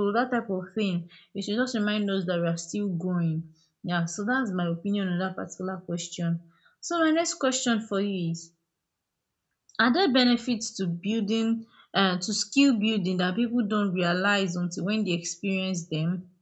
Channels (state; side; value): identical; both; correlation 1.00